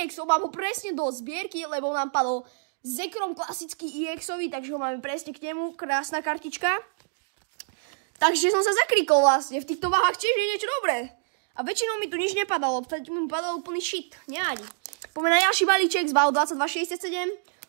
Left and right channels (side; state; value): left; silent; digital silence